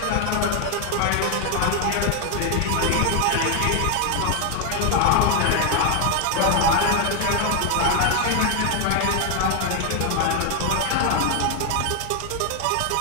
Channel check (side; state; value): both; different; correlation 0.01